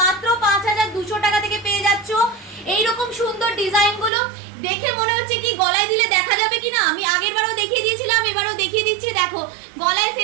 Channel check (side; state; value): left; drops out; at 4.1 s